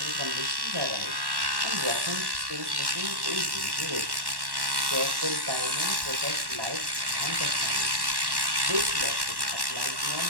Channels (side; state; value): left; late; 1.1 ms